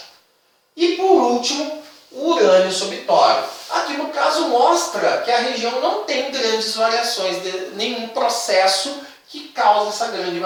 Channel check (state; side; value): identical; both; correlation 1.00